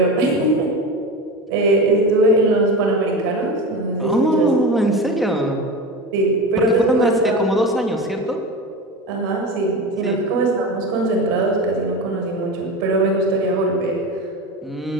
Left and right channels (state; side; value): normal; both; correlation 0.26